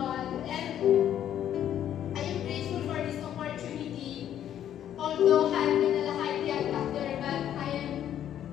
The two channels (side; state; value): right; quieter; 10.6 dB